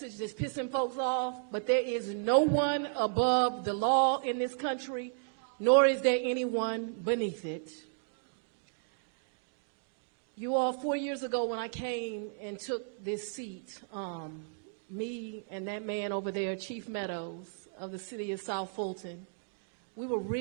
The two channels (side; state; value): left; silent; digital silence